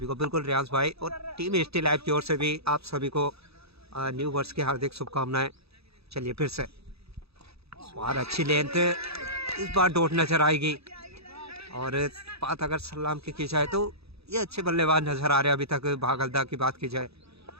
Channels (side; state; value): left; late; 0.78 ms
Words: को। बिल्कुल रियांश भाई और टीम स्टिल लाइव की ओर से भी आप सभी को न्यू वर्ष की हार्दिक शुभकामनाएं। चलिए फिर से बार अच्छी लेंथ, इस बार डॉट नजर आएगी। और बात अगर सलाम की जाए तो ये अच्छे बल्लेबाज नजर आ रहे हैं अभी तक। भागलदा की बात की जाए,